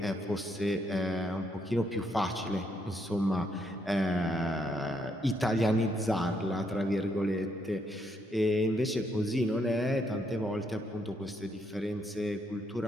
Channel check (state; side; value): normal; both; correlation 0.74